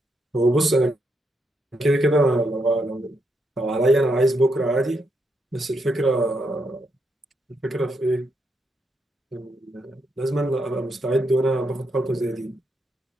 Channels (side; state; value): both; normal; correlation 0.80